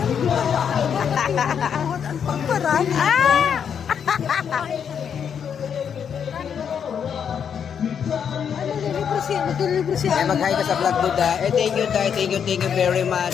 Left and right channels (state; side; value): quieter; right; 7.7 dB